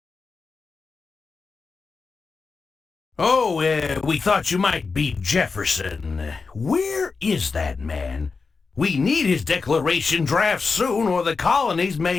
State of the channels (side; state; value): right; quieter; 4.6 dB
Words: Oh, we thought you might be Jefferson. Where is that man? We need his declaration draft soon, or the colonies